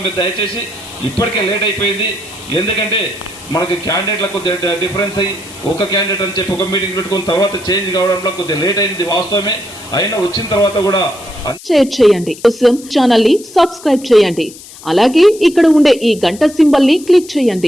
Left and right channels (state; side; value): noise; left; hiss, 18 dB below the sound